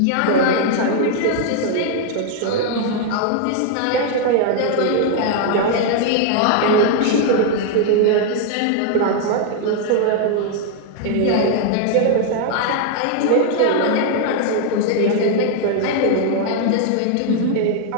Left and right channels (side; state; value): both; different; correlation 0.00